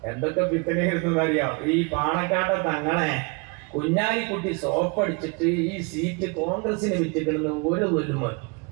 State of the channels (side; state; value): left; quieter; 31.4 dB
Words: എന്തൊക്കെ പിത്തനെയിരുന്നു അറിയാം. ഈ പാണക്കാട്ടെ തങ്ങളെ കുഞ്ഞാലിക്കുട്ടി സോപ്പടിച്ചിട്ട് ഈ സീറ്റ് കോൺഗ്രസിന് വിറ്റിക്കിടുന്ന ഒരു വലുമ